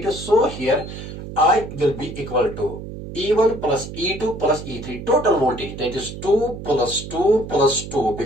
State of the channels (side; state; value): right; noise; hum, 10 dB below the sound